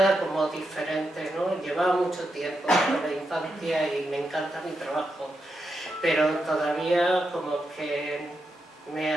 como diferente, ¿no? Llevaba mucho tiempo en la infancia y me encanta mi trabajo, pero todavía como que me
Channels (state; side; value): normal; both; correlation 0.85